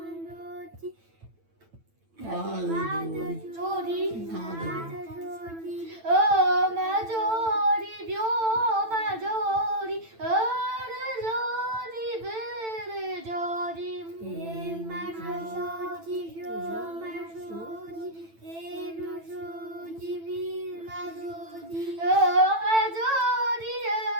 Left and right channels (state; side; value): late; left; 9.0 ms